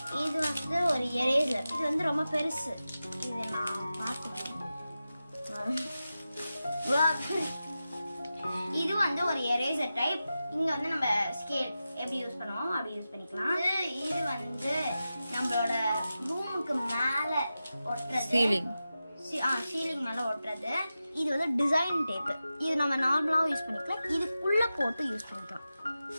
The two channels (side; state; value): both; inverted; correlation -0.93